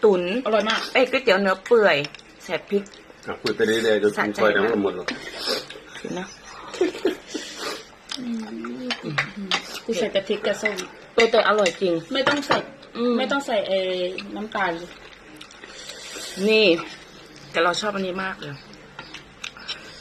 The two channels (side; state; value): both; identical; correlation 1.00